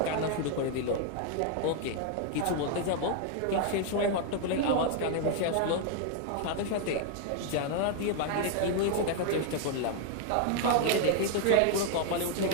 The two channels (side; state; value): both; different; correlation 0.00